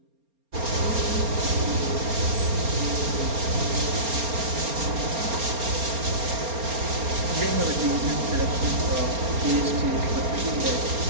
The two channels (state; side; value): late; left; 4.3 ms